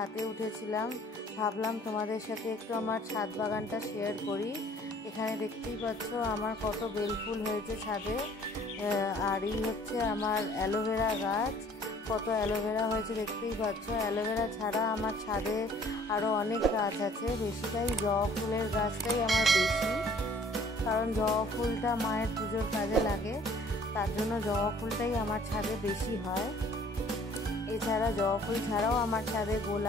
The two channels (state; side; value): normal; both; correlation 0.55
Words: উঠেছিলাম, ভাবলাম তোমাদের সাথে একটু আমার ছাদ বাগানটা শেয়ার করি। এখানে দেখতেই পাচ্ছ আমার কত বেলফুল হয়েছে ছাদে। আর এই হচ্ছে আমার অ্যালোভেরা গাছ, কত অ্যালোভেরা হয়েছে দেখতেই পাচ্ছ। অ্যালোভেরা ছাড়া আমার ছাদে আরও অনেক গাছ আছে, বেশিটাই জবা ফুলের গাছটাই আমার বেশি, কারণ জবা ফুলটা মায়ের পুজোর কাজে লাগে, তার জন্য জবা ফুলটাই আমার ছাদে বেশি হয়। এছাড়া জবা ফুল ছাড়াও আমার ছাদে